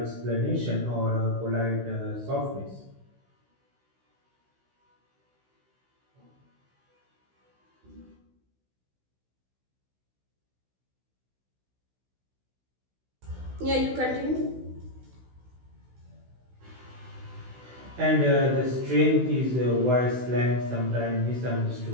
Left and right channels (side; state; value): left; late; 16 ms